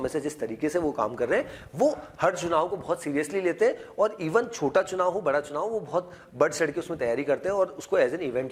से जिस तरीके से वो काम कर रहे हैं, वो हर चुनाव को बहुत सीरियसली लेते हैं, और इवन छोटा चुनाव हो बड़ा चुनाव, वो बहुत बढ़ चढ़ के उसमें तैयारी करते हैं और उसको एज एन इवेंट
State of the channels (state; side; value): identical; both; correlation 1.00